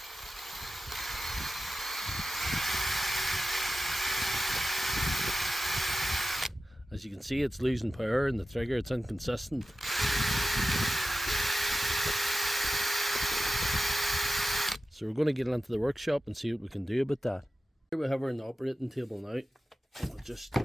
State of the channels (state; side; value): normal; both; correlation 0.94